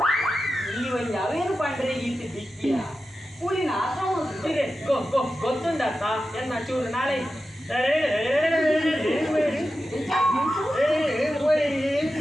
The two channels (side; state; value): both; normal; correlation 0.92